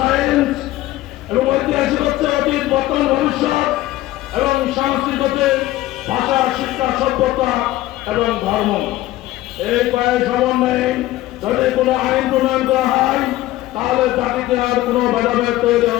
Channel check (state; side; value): quieter; right; 16.1 dB